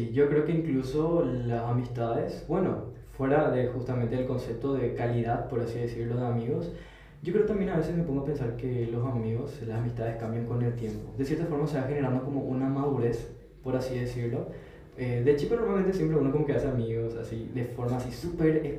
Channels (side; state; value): both; identical; correlation 1.00